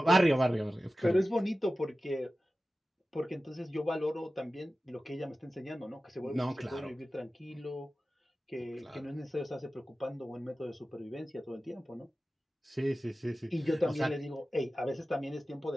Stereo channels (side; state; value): both; normal; correlation 0.95